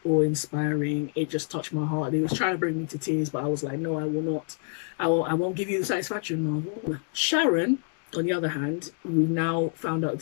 awe-inspiring. It just touched my heart. It was trying to bring me to tears, but I was like, no, I will not. I won't give you the satisfaction, Marvel. Sharon, on the other hand, we now found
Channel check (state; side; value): silent; right; 60 dB below the other